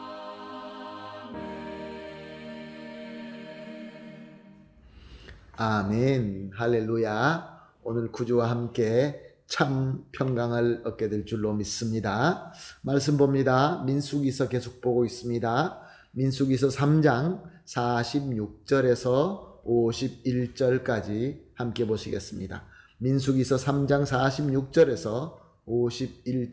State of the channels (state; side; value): identical; both; correlation 1.00